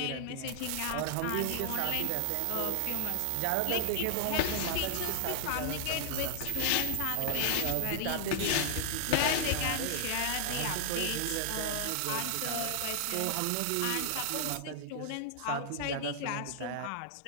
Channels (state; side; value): different; both; correlation 0.00